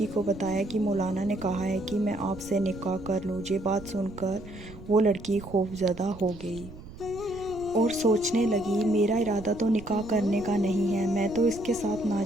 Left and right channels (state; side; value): noise; right; rumble, 16 dB below the sound